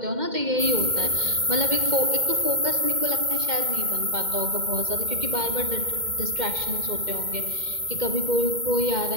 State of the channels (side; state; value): left; late; 2.1 ms